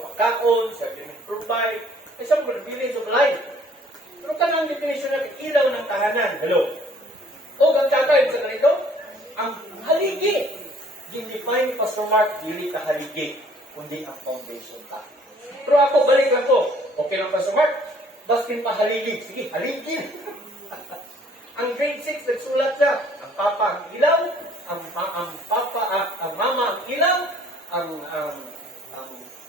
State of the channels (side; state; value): both; normal; correlation 0.58